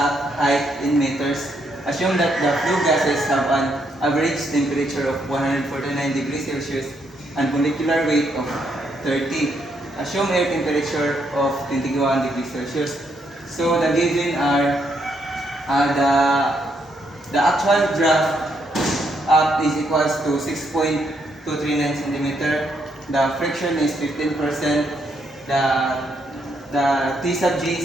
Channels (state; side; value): normal; both; correlation 0.75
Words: height in meters. Assume that the flue gases have an average temperature of 149 degrees Celsius and molecular weight of 30. Assume air temperature of 21 degrees Celsius. So the given are the actual draft up is equals to 6.239 centimeter. The friction is 15%. The T sub G